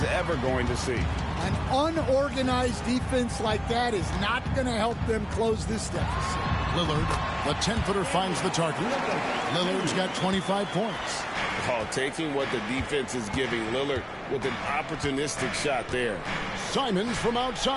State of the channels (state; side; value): identical; both; correlation 1.00